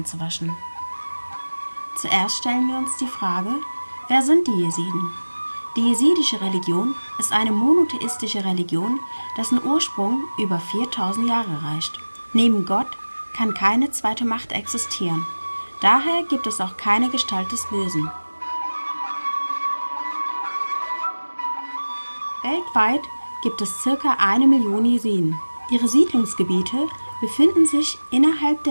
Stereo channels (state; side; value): inverted; both; correlation -1.00